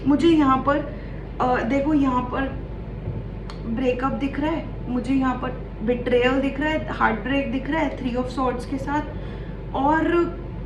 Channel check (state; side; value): identical; both; correlation 1.00